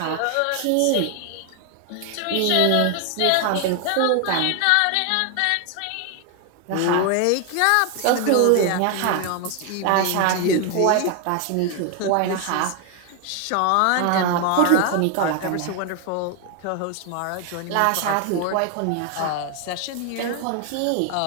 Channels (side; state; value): both; different; correlation 0.00